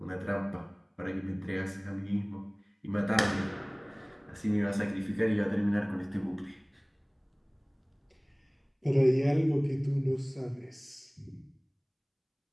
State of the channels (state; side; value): identical; both; correlation 1.00